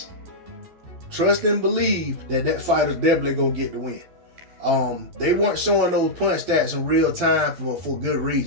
trust and believe that that fighter's definitely going to get the win. They weren't showing those punch stats in real time for good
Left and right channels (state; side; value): late; left; 12 ms